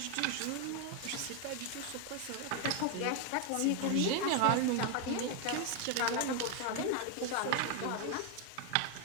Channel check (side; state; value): both; different; correlation 0.01